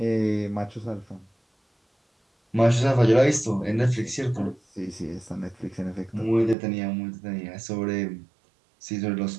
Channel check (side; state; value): left; drops out; at 6.6 s